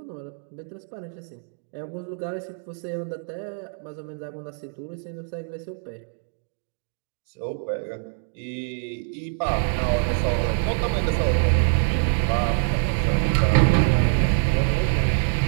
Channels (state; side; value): silent; left; 62 dB below the other